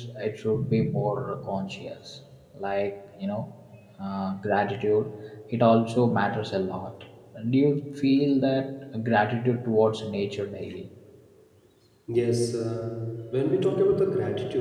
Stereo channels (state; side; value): identical; both; correlation 1.00